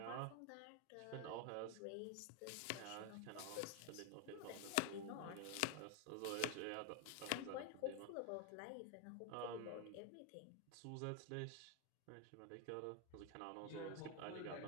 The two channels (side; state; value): both; different; correlation 0.00